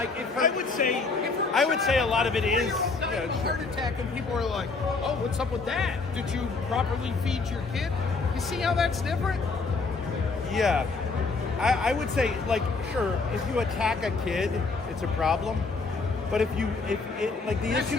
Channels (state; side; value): quieter; right; 4.1 dB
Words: if her, I would say a lot of it is a heart attack, and people are like, "Oh, what's up with that? Did you properly feed your kid?" You see how that's different? Yeah. I would say, like, sure, if you attack a kid, it's a problem. But if like, the issue